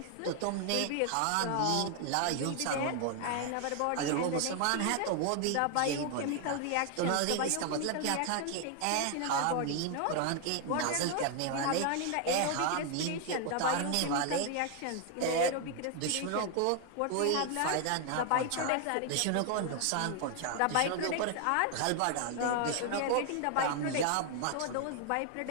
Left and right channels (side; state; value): both; different; correlation 0.00